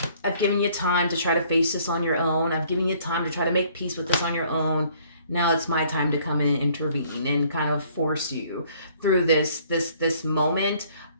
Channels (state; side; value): inverted; both; correlation -0.60